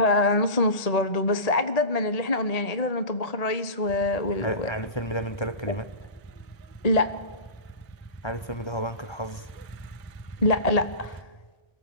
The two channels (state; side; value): late; right; 1.8 ms